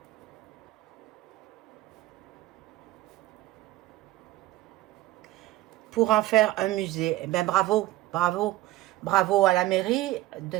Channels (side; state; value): left; quieter; 16.4 dB